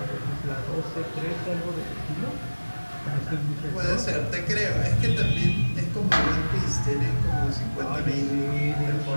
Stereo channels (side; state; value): both; inverted; correlation -1.00